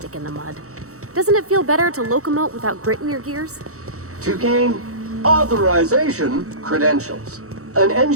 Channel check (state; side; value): late; left; 0.64 ms